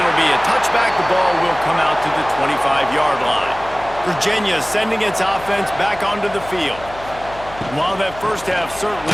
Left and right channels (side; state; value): left; noise; hum, 17 dB below the sound